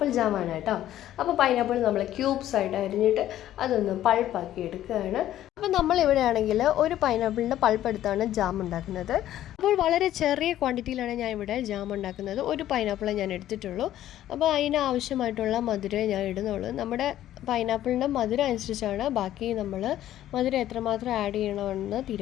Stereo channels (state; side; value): quieter; right; 12.7 dB